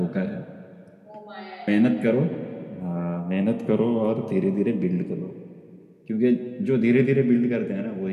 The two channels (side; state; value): both; identical; correlation 1.00